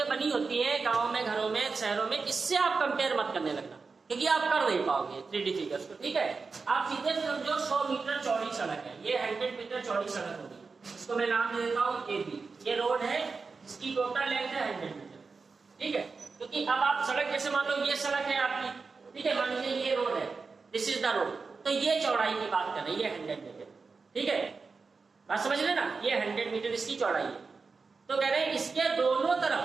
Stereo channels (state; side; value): quieter; left; 4.5 dB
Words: बनी होती हैं गांव में, घरों में, शहरों में, इससे आप कंपेयर मत करने लगना, क्योंकि आप कर नहीं पाओगे 3D फिगर्स को, ठीक है। आप सीधे समझो 100 मीटर चौड़ी सड़क है, ये 100 मीटर चौड़ी सड़क होगी, इसको मैं नाम दे देता हूँ AB, ये रोड है, इसकी टोटल लेंथ है 100 मीटर, ठीक है, क्योंकि अब आप सड़क जैसे मान लो ये सड़क है आपकी, ठीक है, मान लीजिए ये रोड है, दिस इज द रोड, तो ये चौड़ाई की बात कर रही है 100 मीटर, ठीक है, बात समझ लेना, ये 100 मीटर इसकी चौड़ाई है। तो कह रहे हैं इसके